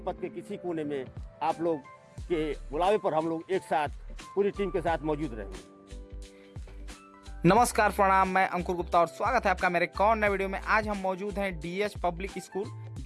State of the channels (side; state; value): both; identical; correlation 1.00